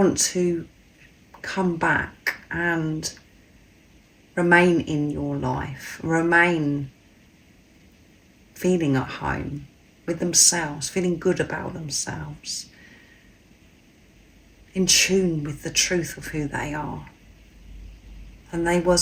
to come back and remain in your life, remain feeling at home with themselves, feeling good about themselves. in tune with the truth of who they are. And they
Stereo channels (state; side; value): identical; both; correlation 1.00